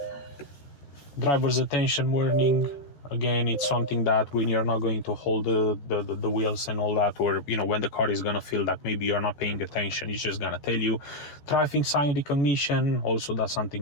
Driver's attention warning, again, it's something that when you're not going to hold the wheels and all that, or you know, when the car is gonna feel that maybe you're not paying attention, it's just gonna tell you. Traffic sign recognition, also that's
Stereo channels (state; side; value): late; right; 14 ms